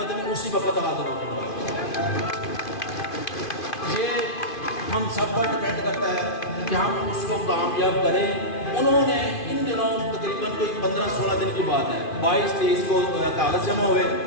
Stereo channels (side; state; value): right; late; 2.5 ms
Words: میں اسی وقت حاضر ہوں گا۔ یہ ہم سب پر ڈیپینڈ کرتا ہے کہ ہم اس کو کامیاب کریں۔ انہوں نے ان دنوں تقریباً کوئی 15-16 دن کی بات ہے، 22-23 کو کاغذ جمع ہوئے،